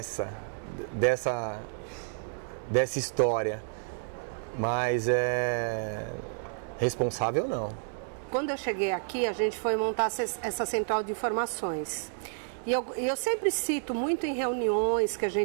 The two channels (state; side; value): silent; left; digital silence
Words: dessa história, mas responsável não. Quando eu cheguei aqui, a gente foi montar essa central de informações. E eu sempre cito muito em reuniões que a